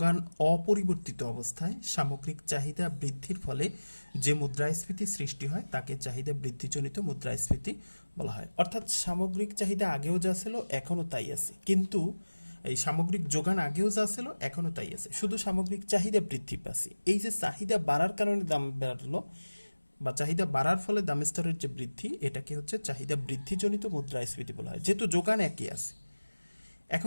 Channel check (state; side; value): inverted; both; correlation -1.00